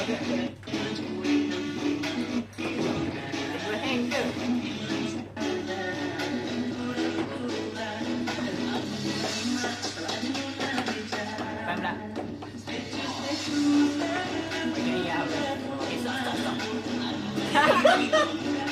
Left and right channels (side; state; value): both; identical; correlation 1.00